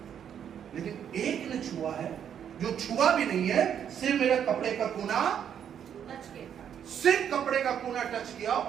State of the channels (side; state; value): left; quieter; 8.8 dB